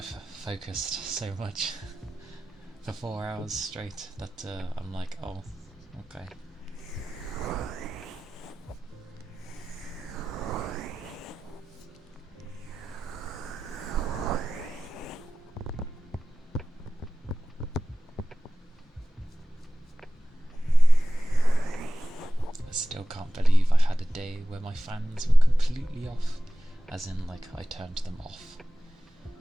focused so much for 4 hours straight that I'm like, oh, okay. I still can't believe I had a day where my fans were completely off, as in like I turned them off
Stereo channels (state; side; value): normal; both; correlation 0.95